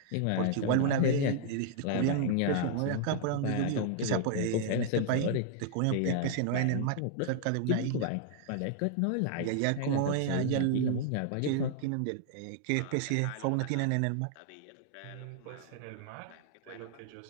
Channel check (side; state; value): both; different; correlation -0.01